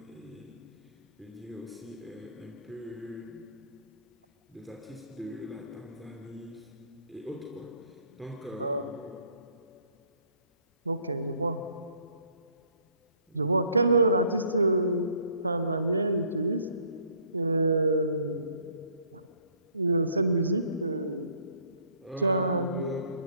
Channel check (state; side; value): inverted; both; correlation -0.62